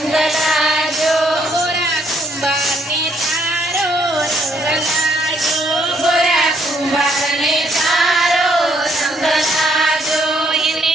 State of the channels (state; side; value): normal; both; correlation 0.70